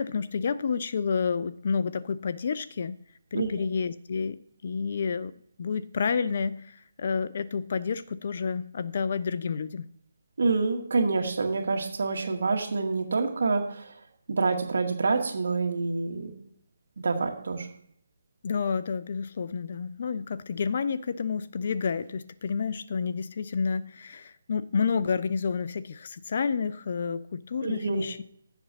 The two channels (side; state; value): both; inverted; correlation -0.83